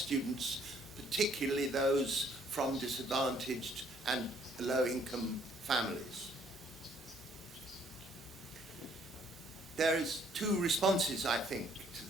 particularly those from disadvantaged and low-income families. There is two responses, I think, to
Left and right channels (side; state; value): both; normal; correlation 0.64